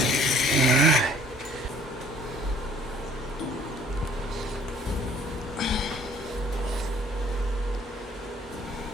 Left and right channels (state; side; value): normal; both; correlation 0.56